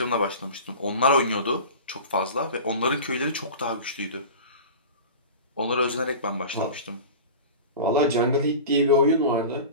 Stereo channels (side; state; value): both; inverted; correlation -0.33